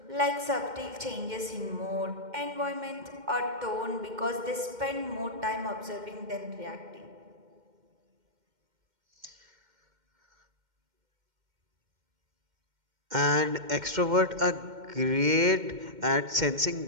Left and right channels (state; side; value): late; left; 2.1 ms